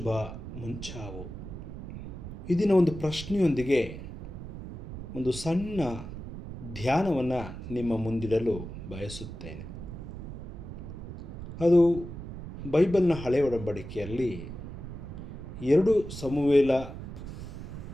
ಮುಂಚಾವು. ಇದೀನ ಒಂದು ಪ್ರಶ್ನೆಯೊಂದಿಗೆ ಒಂದು ಸಣ್ಣ ಧ್ಯಾನವನ್ನು ನಿಮ್ಮ ಮುಂದಿಡಲು ಬಯಸುತ್ತೇನೆ. ಅದು ಬೈಬಲ್ನ ಹಳೆಯ ಒಡಂಬಡಿಕೆಯಲ್ಲಿ 2 ಸಮುವೇಲ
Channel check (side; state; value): right; noise; rumble, 10 dB below the sound